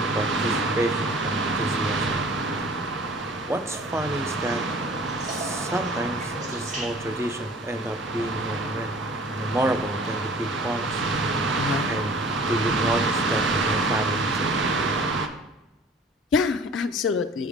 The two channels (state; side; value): normal; both; correlation 0.47